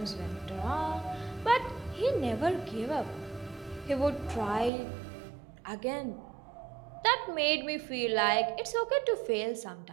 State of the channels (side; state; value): left; drops out; at 4.7 s